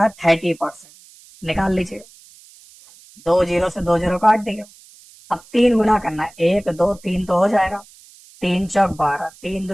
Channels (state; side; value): noise; right; hiss, 24 dB below the sound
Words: 30% निकाल लीजिए। 2 0 से 2 0 काट दिया। अब 3 गुना करना है, 1 2 3 तो हो जाएगा, 3 चौक 12, 3